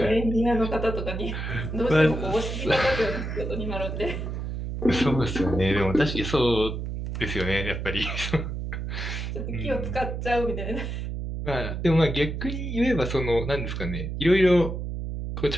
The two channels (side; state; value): right; noise; hum, 4 dB below the sound